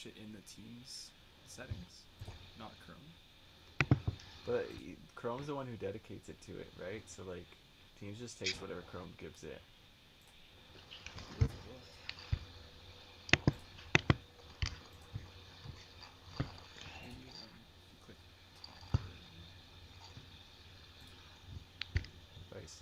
it in the Teams settings, not Chrome? But Chrome's the one who dedicates it to it, right? So like, Teams just takes whatever Chrome gives it. Maybe, if you click Device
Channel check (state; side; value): identical; both; correlation 1.00